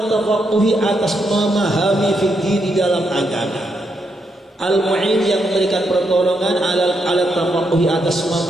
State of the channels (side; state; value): both; normal; correlation 0.80